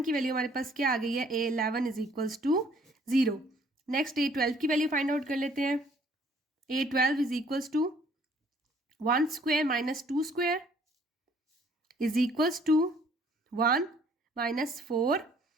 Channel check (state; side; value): normal; both; correlation 0.60